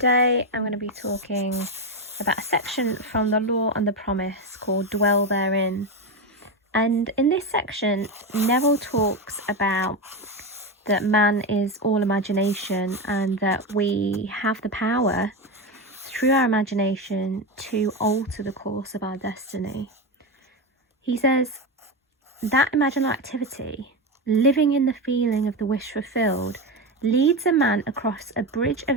I'm going to be talking about a section from The Law and the Promise called Dwell Therein. And in this section, Neville talks about that man is all imagination and that we have the power through our imagination to alter the course of our destiny. He says that imaginal activity, living in the feeling of the wish fulfilled, leads a man across a bridge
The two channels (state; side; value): normal; both; correlation 0.15